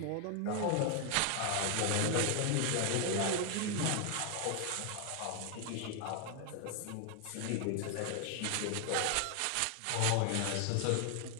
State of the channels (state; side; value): different; both; correlation 0.00